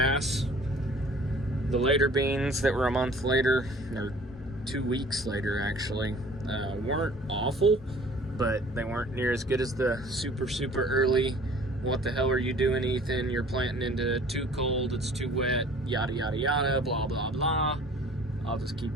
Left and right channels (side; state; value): both; normal; correlation 0.50